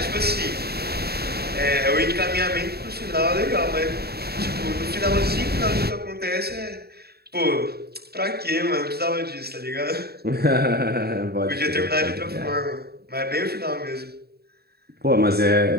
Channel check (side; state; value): left; late; 0.46 ms